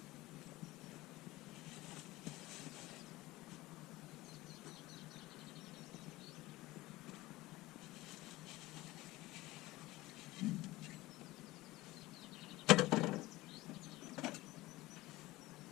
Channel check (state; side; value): quieter; right; 18.9 dB